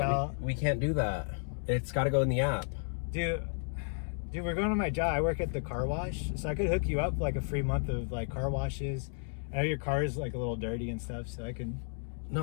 We can't do that. It's got to go in the app. Dude, we're going to my job. I work at the car wash, so I could hook you up like a free month of like car washes. I know your car is like a little dirty and stuff, so I can. No,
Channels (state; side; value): silent; right; 56 dB below the other